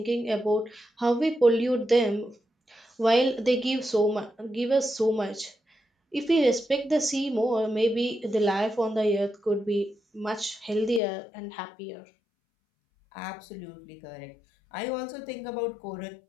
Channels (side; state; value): right; drops out; at 11.0 s